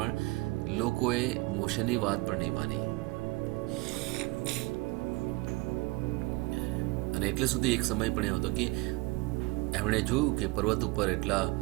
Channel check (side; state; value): left; quieter; 23.1 dB